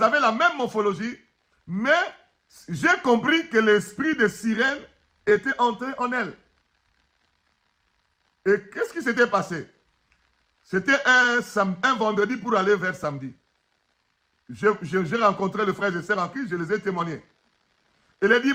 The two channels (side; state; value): both; identical; correlation 1.00